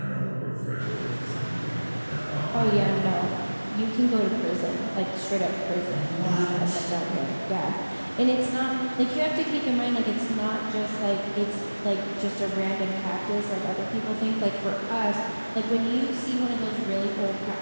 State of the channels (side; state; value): both; inverted; correlation -1.00